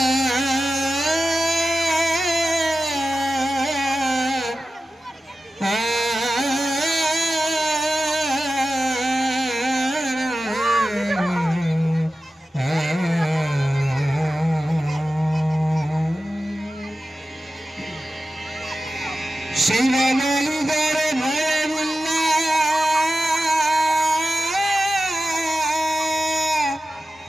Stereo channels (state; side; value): normal; both; correlation 0.94